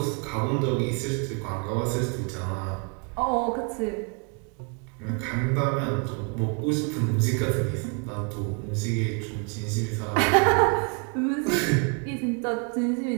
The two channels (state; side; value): quieter; left; 36.8 dB